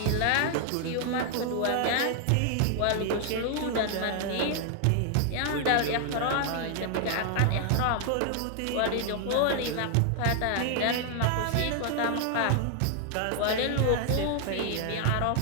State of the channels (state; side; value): different; both; correlation 0.00